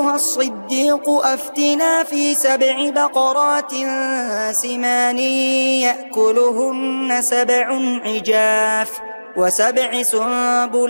الصديق أفتنا في 7 بقرات سمان يأكلهن 7 عجاف و7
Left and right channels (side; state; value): both; inverted; correlation -1.00